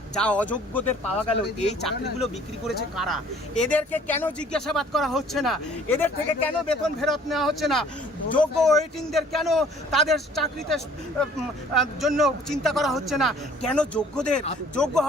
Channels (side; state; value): both; normal; correlation 0.54